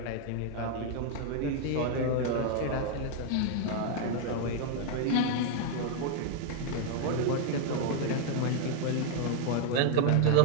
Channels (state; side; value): different; both; correlation 0.00